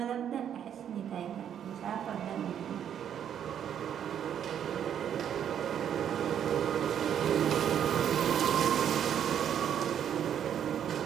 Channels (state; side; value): quieter; left; 9.3 dB